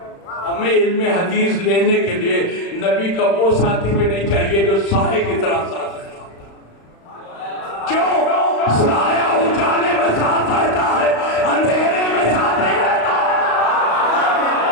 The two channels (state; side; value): late; right; 35 ms